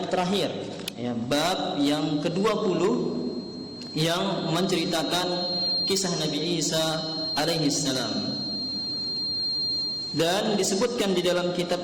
terakhir, ya, bab yang ke-20 yang menceritakan kisah Nabi Isa alaihi salam. Dan disebutkan di dalam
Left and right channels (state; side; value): identical; both; correlation 1.00